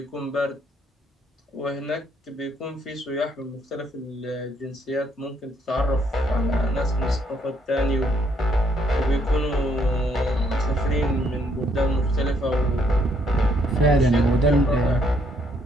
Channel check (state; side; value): normal; both; correlation 0.70